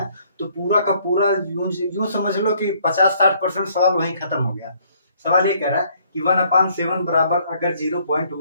तो पूरा का पूरा यूं समझ लो कि 50-60% सवाल वहीं खत्म हो गया। सवाल ये कह रहा है कि 1/7 बराबर अगर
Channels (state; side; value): inverted; both; correlation -0.64